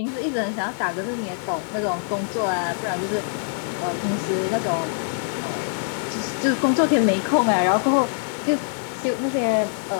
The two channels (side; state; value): right; silent; 63 dB below the other